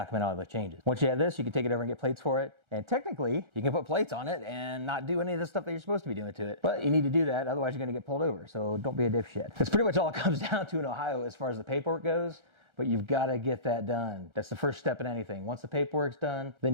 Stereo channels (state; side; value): late; left; 1.3 ms